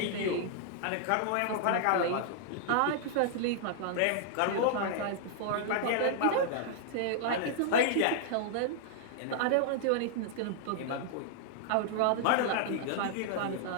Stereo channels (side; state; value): both; different; correlation -0.01